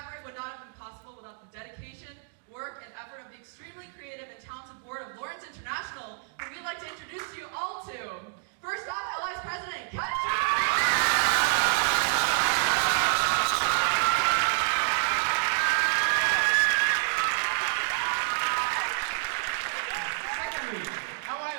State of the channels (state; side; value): silent; left; digital silence